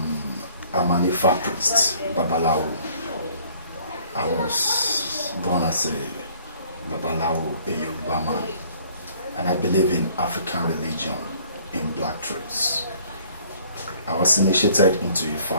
an Ifa priest, Babalawo. I was born as a Babalawo, a Yoruba man, and I believe in African religion in black traits. I was initiated into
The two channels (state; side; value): inverted; both; correlation -0.57